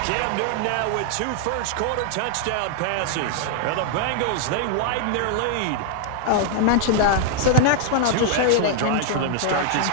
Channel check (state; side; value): different; both; correlation 0.00